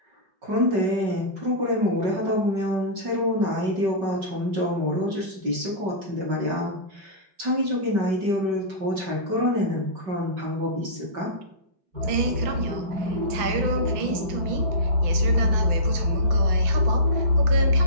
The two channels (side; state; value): left; late; 5.3 ms